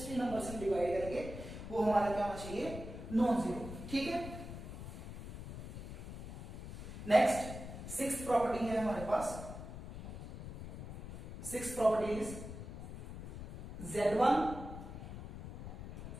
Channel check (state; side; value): noise; left; rumble, 9 dB below the sound